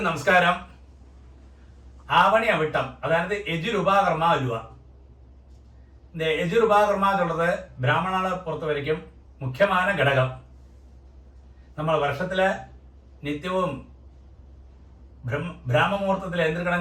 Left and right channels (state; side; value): identical; both; correlation 1.00